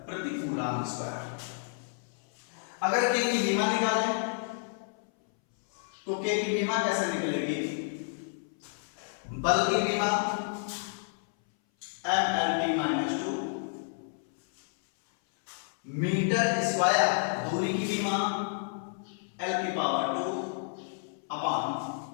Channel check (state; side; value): silent; right; 57 dB below the other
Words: प्रति कूलाम स्क्वायर। अगर K की विमा निकालें तो K की विमा कैसे निकलेगी? बल की विमा mLt-2 मीटर स्क्वायर दूरी की विमा L⁻² अपान